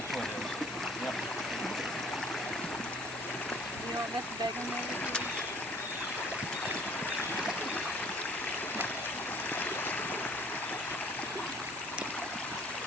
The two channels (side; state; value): both; normal; correlation 0.54